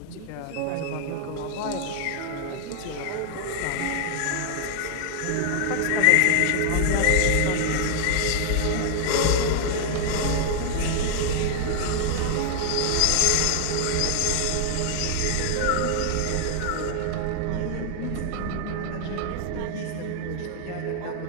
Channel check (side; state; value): both; different; correlation 0.00